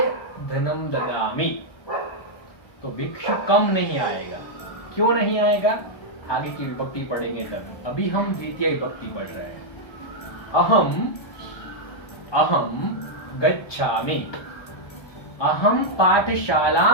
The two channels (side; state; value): right; late; 1.3 ms